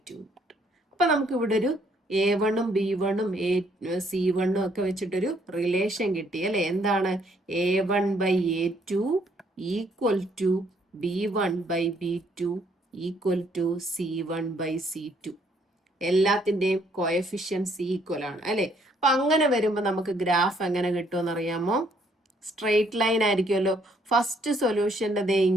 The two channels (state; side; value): normal; both; correlation 0.67